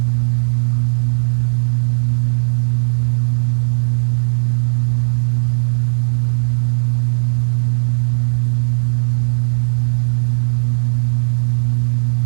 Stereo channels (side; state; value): left; silent; 69 dB below the other